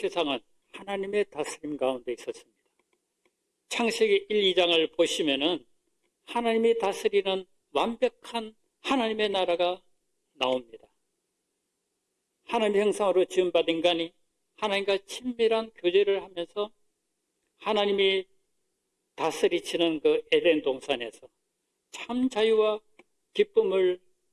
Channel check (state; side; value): identical; both; correlation 1.00